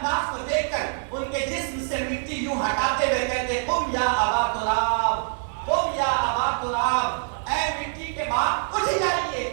کو دیکھ کر ان کے جسم سے مٹی یوں ہٹاتے ہوئے کہتے قم یا ابا تراب, قم یا ابا تراب, اے مٹی کے باپ اٹھ جائیے,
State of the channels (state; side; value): silent; left; digital silence